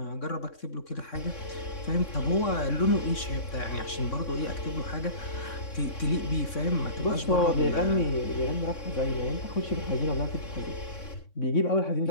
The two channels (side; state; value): right; late; 3.6 ms